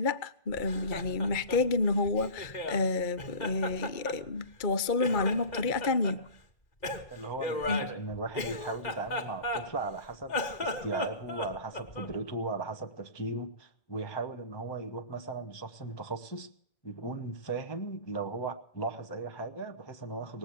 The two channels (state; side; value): late; right; 2.3 ms